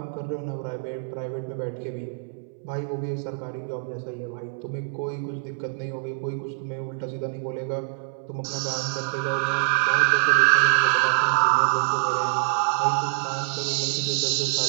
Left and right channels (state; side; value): silent; left; 61 dB below the other